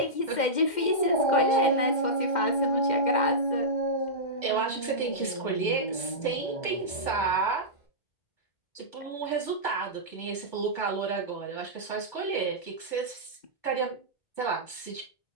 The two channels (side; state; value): right; late; 2.0 ms